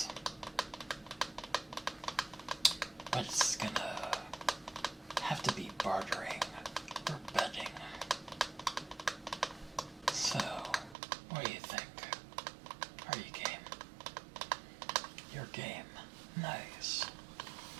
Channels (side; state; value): left; drops out; at 11.0 s